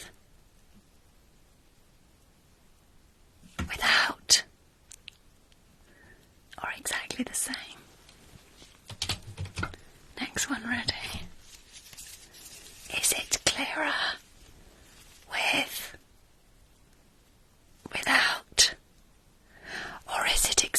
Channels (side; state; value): both; identical; correlation 1.00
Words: without, or exactly the same? Next one, ready? Is it clearer with, without, or is it